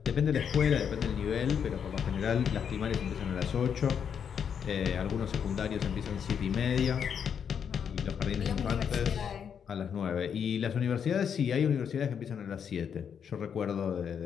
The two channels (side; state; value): right; quieter; 7.6 dB